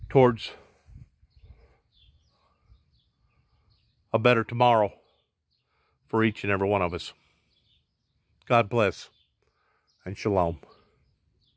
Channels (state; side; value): identical; both; correlation 1.00